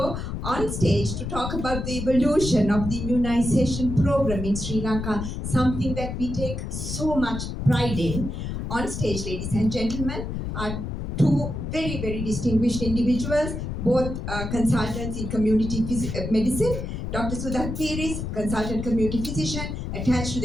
on stage to talk about the evolution of the immunization program in Sri Lanka, something that we take so much pride in. On stage, ladies and gentlemen, are two very, very distinguished individuals, both consultants in community medicine. Dr. Sudha Piris, consultant community physician, attached to the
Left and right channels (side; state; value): left; noise; rumble, 5 dB below the sound